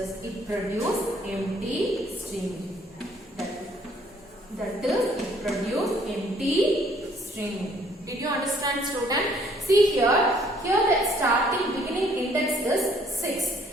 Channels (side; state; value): both; normal; correlation 0.62